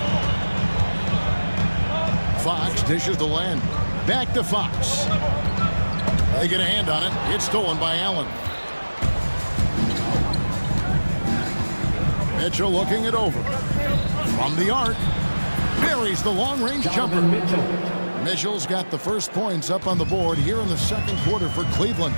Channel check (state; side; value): inverted; both; correlation -1.00